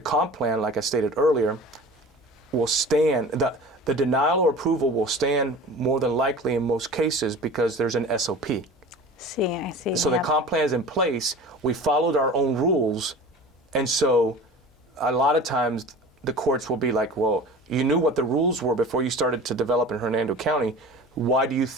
comp plan, like I stated earlier, will stand. The denial or approval will stand more than likely in most cases because there's an SOP. I see. So the comp plan is in place. We followed our own rules, and so a lot of times the courts will be like, well, you knew what the rules were before you started to develop in Hernando County. Why do you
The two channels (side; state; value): both; normal; correlation 0.38